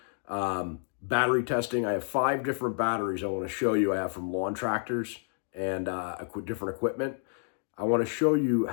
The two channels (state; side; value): silent; right; 58 dB below the other